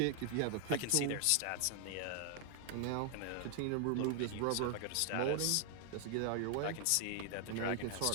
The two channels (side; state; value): both; different; correlation 0.00